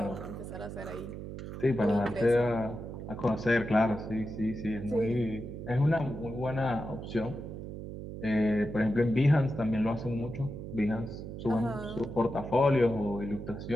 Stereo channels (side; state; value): right; noise; hum, 9 dB below the sound